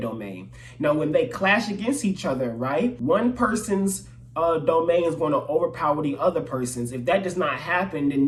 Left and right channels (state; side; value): identical; both; correlation 1.00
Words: Now when they clash against each other, right, one person's domain is going to overpower the other person's. If that does not happen, then